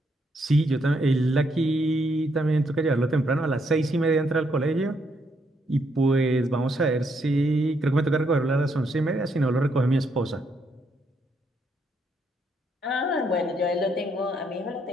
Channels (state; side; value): normal; both; correlation 0.75